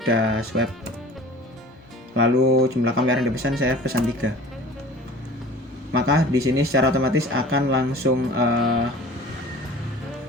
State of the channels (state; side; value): normal; both; correlation 0.43